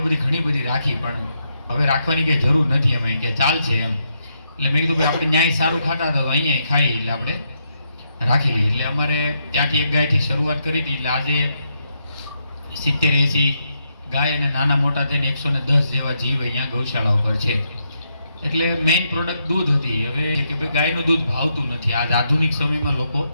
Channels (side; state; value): both; inverted; correlation -0.79